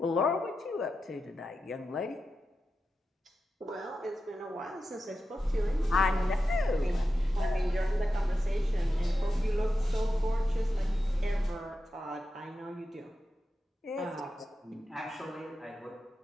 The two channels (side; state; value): both; normal; correlation 0.90